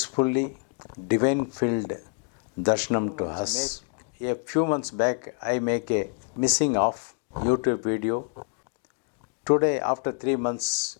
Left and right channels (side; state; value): right; quieter; 37.9 dB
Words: divine filled darshanam to us. A few months back, I make a missing of YouTube video. Today, after 3 months,